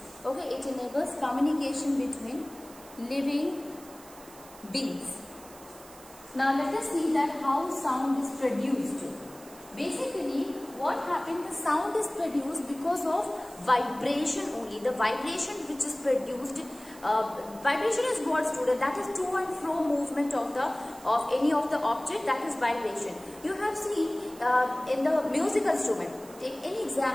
Okay, it enables communication between living beings. Now let us see that how sound is produced. Basically, what happened? The sound is produced because of vibration only. The vibration which is produced. Vibration is what, student? That is to and fro movement of any of the object. That is vibration. You have seen in the musical instrument. Take any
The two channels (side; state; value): right; noise; hiss, 20 dB below the sound